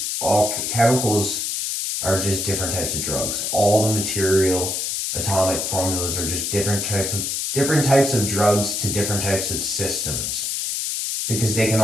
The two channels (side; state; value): left; noise; hiss, 1 dB below the sound